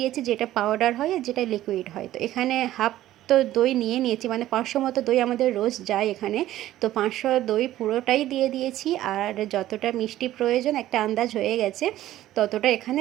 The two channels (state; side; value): quieter; left; 14.0 dB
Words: যেটা পাউডার হয় আর যেটা লিকুইড হয়। তো এখানে হাফ তো দই নিয়ে নিয়েছি, মানে 500 মতো দই আমাদের রোজ যায় এখানে। তো 500 দই পুরোটাই দিয়ে দিয়েছি, আর যতটা মিষ্টি প্রয়োজন একটা আন্দাজ হয়ে গেছে ততটা এখানে